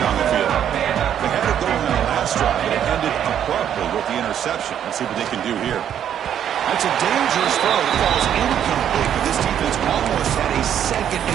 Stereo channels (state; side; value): quieter; left; 9.7 dB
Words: the field. They had it going on the last drive, but it ended abruptly with the interception. Let's see what they can do here. That's a dangerous throw. It falls incomplete, but this defense almost had a second